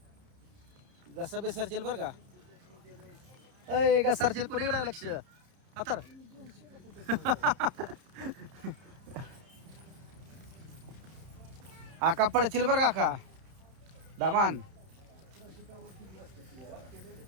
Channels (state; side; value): late; left; 31 ms